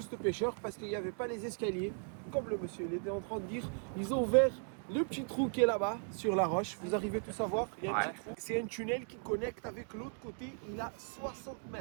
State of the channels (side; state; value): left; silent; 53 dB below the other